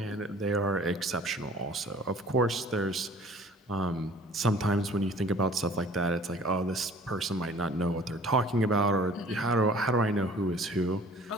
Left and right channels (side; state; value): both; normal; correlation 0.50